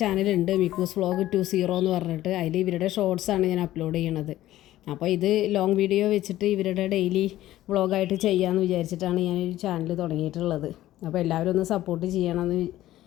ചാനലുണ്ട്, മിക്കൂസ് വ്ളോഗ് 20 എന്ന് പറഞ്ഞിട്ട്. അതിൽ ഇവരുടെ ഷോർട്സാണ് ഞാൻ അപ്ലോഡ് ചെയ്യണത്. അപ്പോൾ ഇത് ലോങ് വീഡിയോ വെച്ചിട്ട് ഇവരുടെ ഡെയിലി വ്ളോഗായിട്ട് ചെയ്യാമെന്ന് വിചാരിച്ചിട്ടാണ് ഞാനൊരു ചാനൽ തുടങ്ങിയിട്ടുള്ളത്. അപ്പോൾ എല്ലാവരും ഒന്ന് സപ്പോർട്ട് ചെയ്യണമെന്ന്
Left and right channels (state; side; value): quieter; right; 14.5 dB